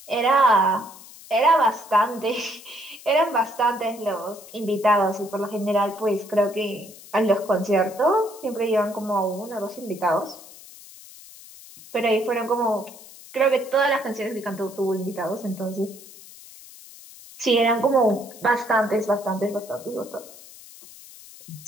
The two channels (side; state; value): left; noise; hiss, 19 dB below the sound